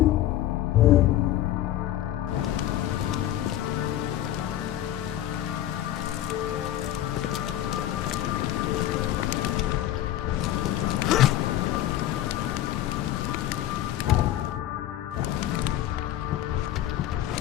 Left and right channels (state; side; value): quieter; right; 13.2 dB